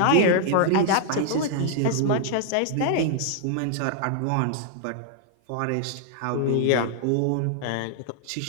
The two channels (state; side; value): different; both; correlation 0.00